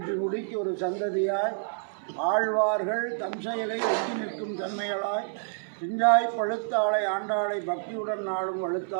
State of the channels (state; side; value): silent; left; 59 dB below the other